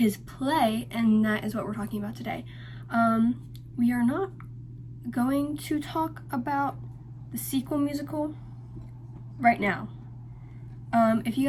play, and that is what we're talking about today. We are not going to talk about the sequel musical right now. If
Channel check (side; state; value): both; identical; correlation 1.00